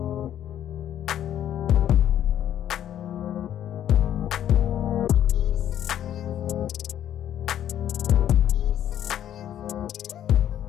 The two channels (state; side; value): quieter; right; 10.8 dB